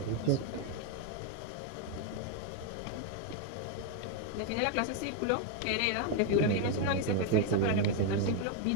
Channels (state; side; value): different; both; correlation 0.01